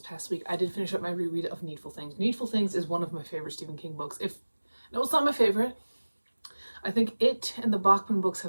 past week, I did finish up my reread of Needful Things. Needful Things is one of my favorite Stephen King books. No, it's not my favorite. I think it and the Bachman books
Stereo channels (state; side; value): inverted; both; correlation -1.00